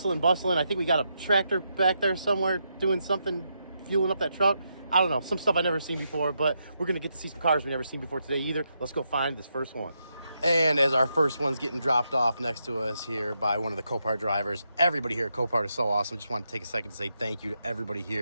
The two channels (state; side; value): inverted; both; correlation -0.82